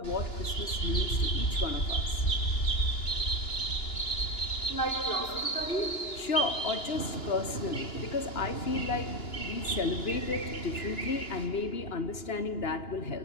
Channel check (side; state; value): right; late; 2.9 ms